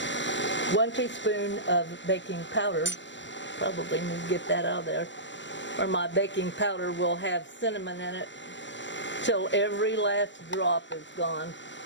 1 teaspoon of baking powder. Probably need to get that out of there. Or my baking powder will have cinnamon in it till every last drop is gone.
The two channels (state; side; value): late; right; 0.53 ms